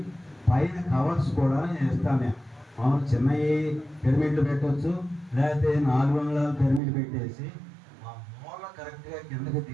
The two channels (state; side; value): drops out; left; at 6.8 s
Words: పైన కవర్స్ కూడా నేను ఇస్తాను. మామూలు చిన్నవి పిరమిడ్లు పెట్టవచ్చు, లేకపోతే 400 పిరమిడ్ పెట్టేసి కరెక్ట్గా కిందకి